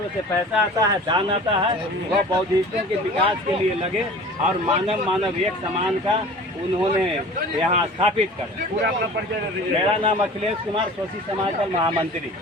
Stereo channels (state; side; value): normal; both; correlation 0.42